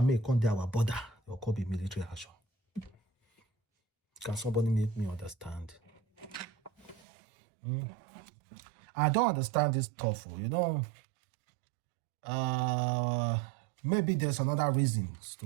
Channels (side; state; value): left; drops out; at 7.0 s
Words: may come to our border? There could be military action. Can somebody make me understand? I don't understand this stuff. Maybe there's another reason